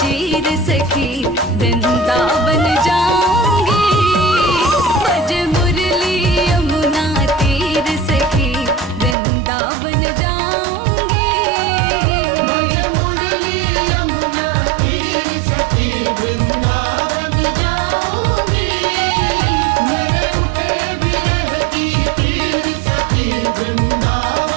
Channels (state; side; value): drops out; left; at 9.2 s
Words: चीर सखी वृंदावन जाऊंगी बज मुरली यमुना तीर सखी वृंदावन जाऊंगी बज मुरली यमुना तीर सखी वृंदावन जाऊंगी मेरे उठे विरह की तीर सखी